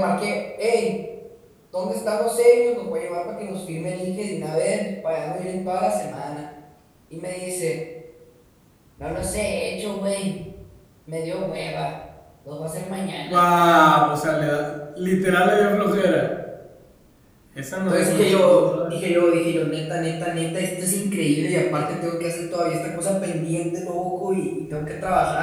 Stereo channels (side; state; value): both; identical; correlation 1.00